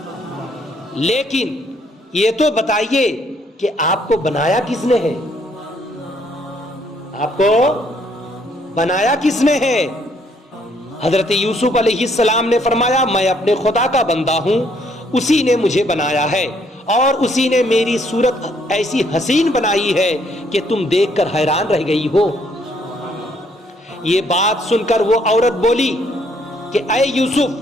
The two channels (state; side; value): normal; both; correlation 0.67